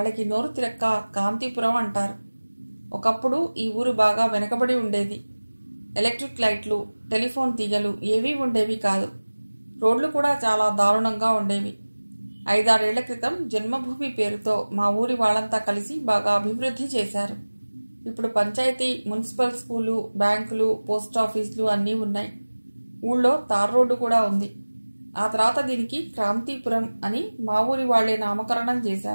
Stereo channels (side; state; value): both; inverted; correlation -1.00